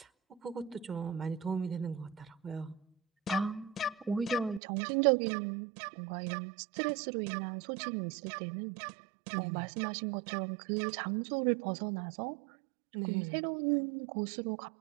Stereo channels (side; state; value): left; drops out; at 4.6 s